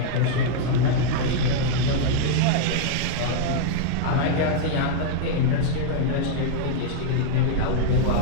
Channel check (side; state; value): both; different; correlation -0.01